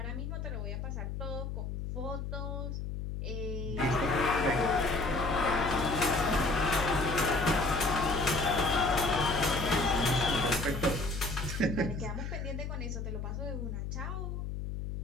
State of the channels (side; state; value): left; noise; hum, 5 dB below the sound